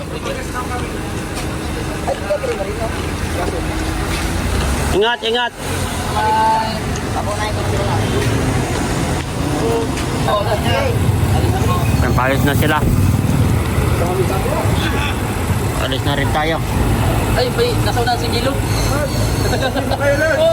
Ingat, ingat. Palis na sila. Palis na rin tayo. Ay, nasauna si Gilo.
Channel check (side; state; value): both; identical; correlation 1.00